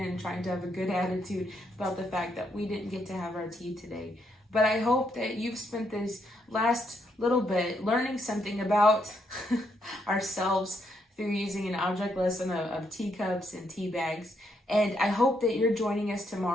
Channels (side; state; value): both; normal; correlation 0.76